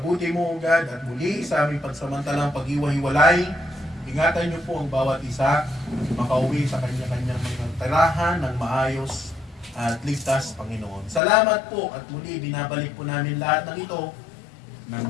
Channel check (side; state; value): right; drops out; at 11.2 s